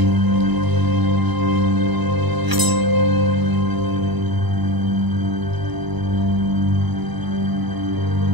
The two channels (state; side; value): late; left; 1.0 ms